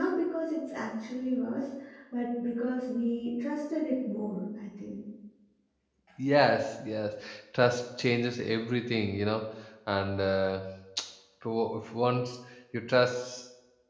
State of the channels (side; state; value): both; identical; correlation 1.00